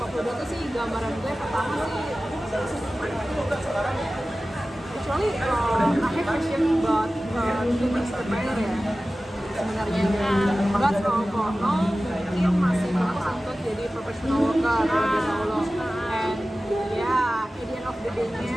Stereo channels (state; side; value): normal; both; correlation 0.96